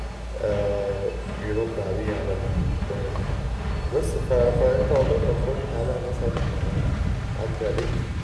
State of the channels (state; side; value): identical; both; correlation 1.00